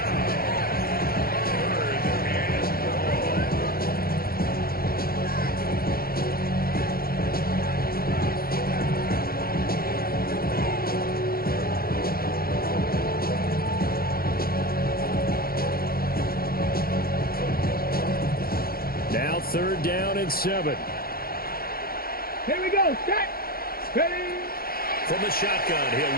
Now 3rd down and 7. Here we go. Set. Ready. From the shotgun, he'll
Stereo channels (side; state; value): right; late; 0.44 ms